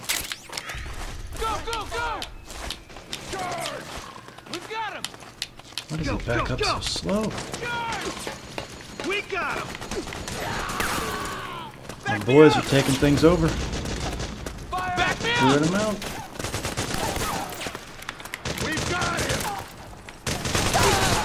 Why does he back up so slow? We got him! My boys are taking things over. Clearing them out. We've got him!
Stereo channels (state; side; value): identical; both; correlation 1.00